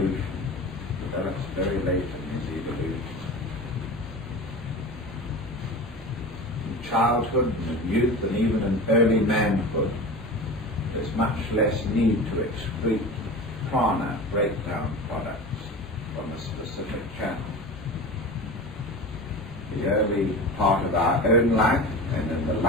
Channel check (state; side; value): normal; both; correlation 0.32